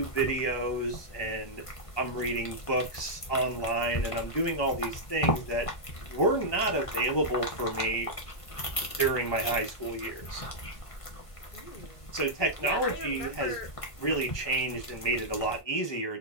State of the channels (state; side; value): late; right; 1.5 ms